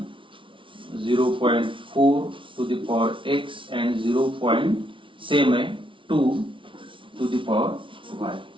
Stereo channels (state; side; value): late; left; 0.25 ms